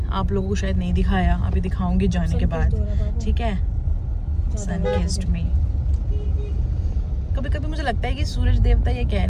आप लोगों को शायद नहीं दिखाया, अभी दिखाऊंगी जाने के बाद। ठीक है, सन किस्ड मी। कभी कभी मुझे लगता है कि सूरज देवता ये कह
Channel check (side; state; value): both; identical; correlation 1.00